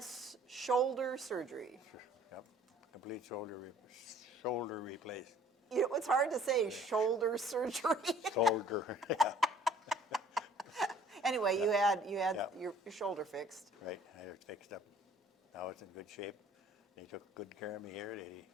shoulder surgery. Yep, complete shoulder replaced. You know, it's hard to say shoulder surgery. Shoulder, yeah. Anyway, you had Yeah. your shoulder fixed. Right, I had it fixed up. Now it's in good shape. They took good care of me here. They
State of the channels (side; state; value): both; normal; correlation 0.54